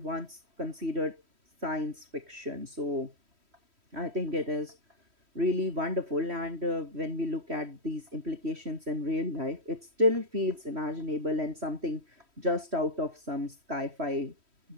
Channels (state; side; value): late; left; 3.1 ms